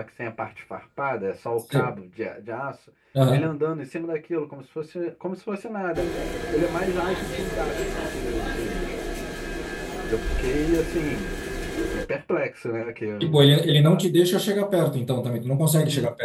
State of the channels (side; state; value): both; identical; correlation 1.00